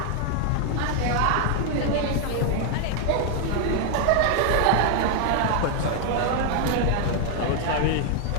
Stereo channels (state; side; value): different; both; correlation 0.00